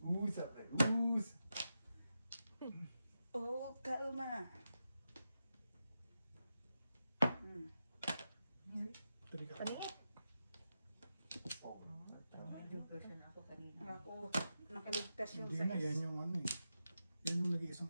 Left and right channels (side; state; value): both; inverted; correlation -0.89